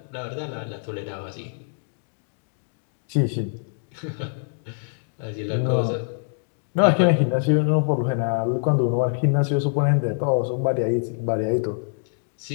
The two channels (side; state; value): right; silent; digital silence